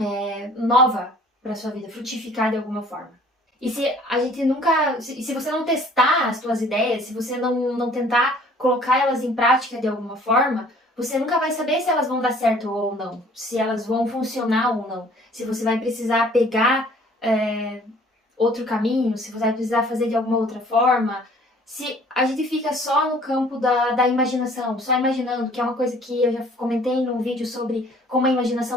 nova para sua vida, frutificar de alguma forma. E se a gente nunca, se você não testar as suas ideias, se você não tentar colocar elas em prática de alguma forma, você nunca vai saber se elas vão dar certo ou não, se elas vão funcionar ou não, se você vai precisar pegar outro caminho, se você vai precisar fazer de alguma outra forma. Se a gente fica só no campo da imaginação, só imaginando, que é uma coisa que eu já comentei num vídeo sobre como a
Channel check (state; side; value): normal; both; correlation 0.54